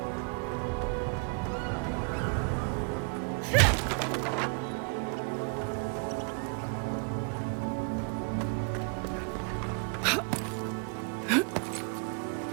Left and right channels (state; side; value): quieter; left; 36.4 dB